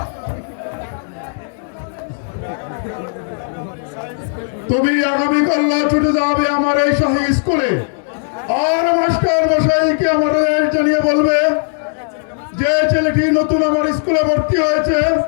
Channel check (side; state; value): right; silent; digital silence